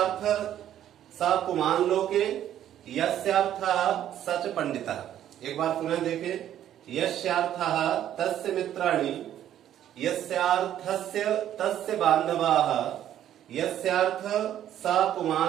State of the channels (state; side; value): quieter; left; 11.2 dB